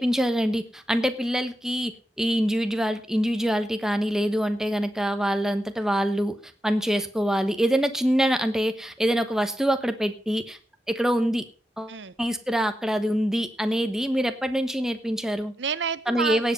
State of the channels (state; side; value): normal; both; correlation 0.88